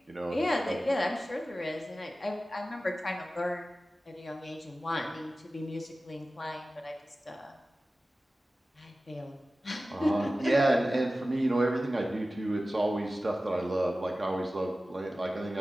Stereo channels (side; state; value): both; normal; correlation 0.95